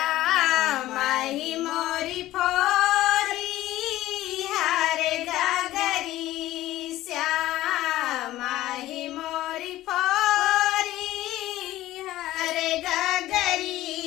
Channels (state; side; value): quieter; right; 15.5 dB